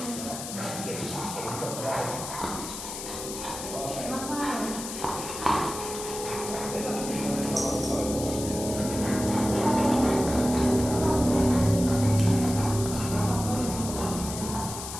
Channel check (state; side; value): noise; left; hiss, 8 dB below the sound